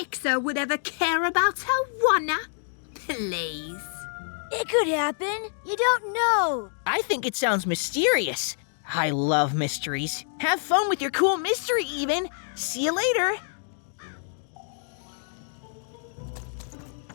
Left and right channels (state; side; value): silent; right; digital silence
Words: would ever care about her oneer. Please. It could happen. You don't know. I think it sounds mysterious. I love mysteries. Have fun with your cool mystery, Even. See you later.